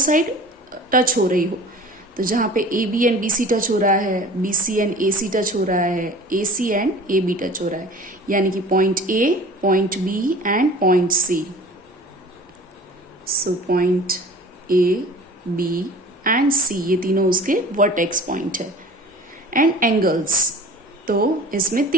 टच हो रही हो, तो जहां पे AB एंड BC टच हो रहा है, BC एंड AC टच हो रहा है, AC एंड AB टच हो रहा है, यानी कि point A, point B and point C। So point A, B and C, ये तीनों उसके वर्टेक्स पॉइंट है। एंड एंगल्स, तो इसमें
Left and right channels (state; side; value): normal; both; correlation 0.43